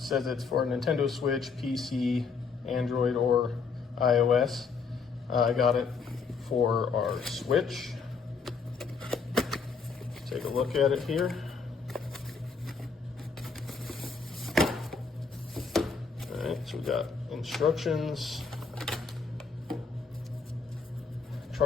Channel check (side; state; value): right; quieter; 5.1 dB